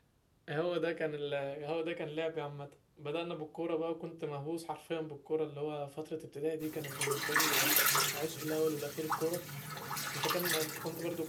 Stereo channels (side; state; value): both; identical; correlation 1.00